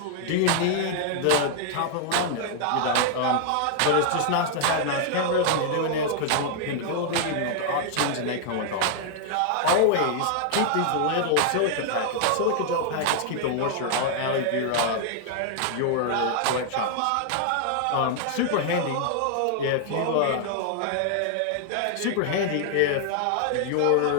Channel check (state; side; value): different; both; correlation 0.00